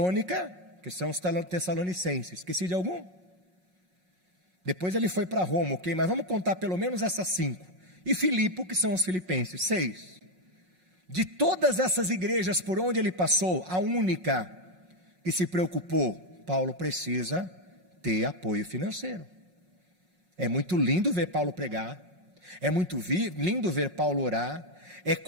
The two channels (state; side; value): late; left; 5.5 ms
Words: que são os Tessalonicenses. Esqueci de algum? Depois ele foi para Roma, ok? Mas vamos contar pelo menos essas 5. E Filipe, que são os Filipenses, 6. De todas essas igrejas por onde ele passou, a única que se preocupou, Paulo precisa ter apoio financeiro. É muito lindo ver Paulo pregar, é muito lindo ver Paulo orar, é